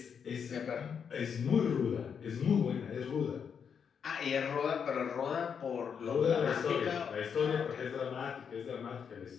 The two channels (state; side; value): quieter; right; 7.0 dB